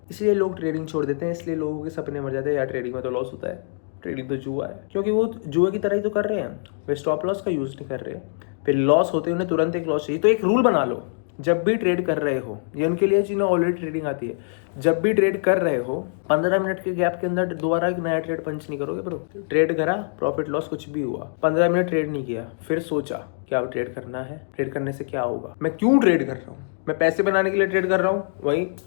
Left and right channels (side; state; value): right; silent; digital silence